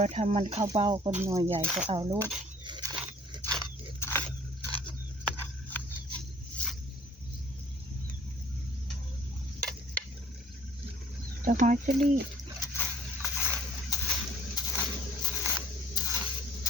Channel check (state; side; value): normal; both; correlation 0.53